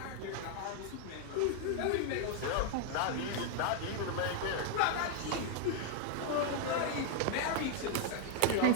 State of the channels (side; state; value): both; different; correlation 0.00